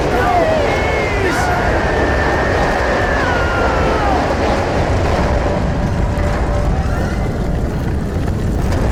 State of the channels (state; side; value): identical; both; correlation 1.00